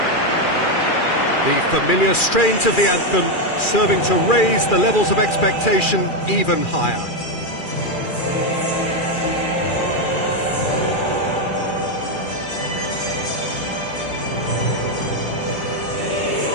The familiar strains of the anthem serving to raise the levels of expectation even higher.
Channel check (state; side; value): late; right; 2.4 ms